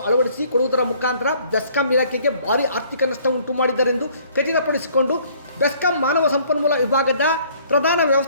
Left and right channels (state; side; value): inverted; both; correlation -0.59